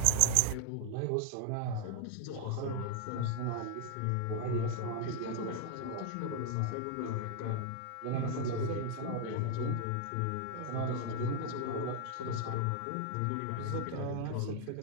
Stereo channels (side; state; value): both; different; correlation 0.00